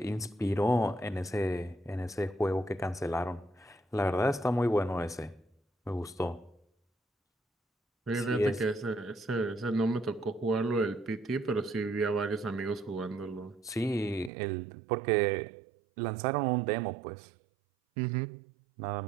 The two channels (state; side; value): drops out; left; at 14.3 s